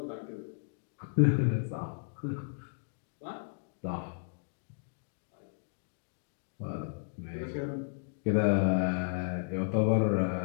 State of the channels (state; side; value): silent; right; digital silence